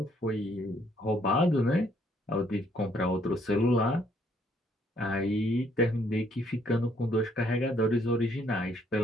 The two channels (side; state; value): both; normal; correlation 0.67